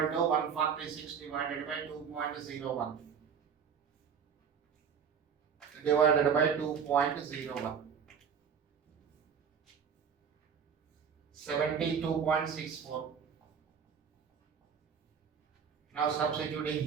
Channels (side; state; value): left; quieter; 7.0 dB